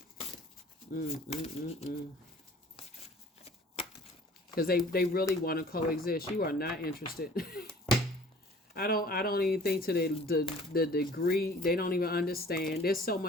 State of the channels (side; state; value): both; normal; correlation 0.50